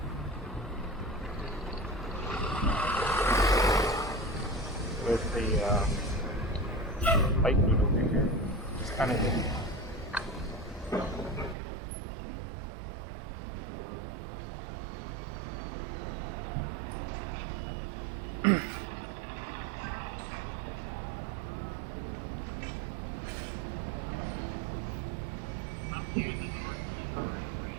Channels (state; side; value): drops out; left; at 11.6 s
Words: With the bike route over here. It's kind of hidden.